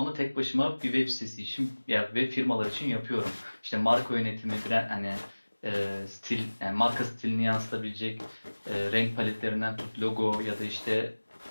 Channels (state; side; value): inverted; both; correlation -1.00